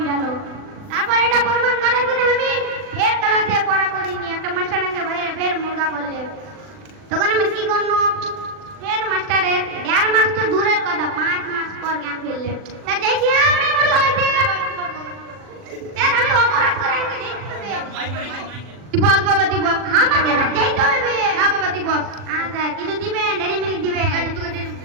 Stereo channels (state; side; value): late; left; 39 ms